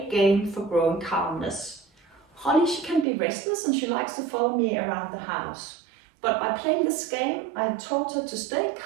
game for growing calmness. Holly, she can be restless and she likes to follow me around the house. But by playing this game, I have taught her to stay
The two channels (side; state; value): left; drops out; at 3.1 s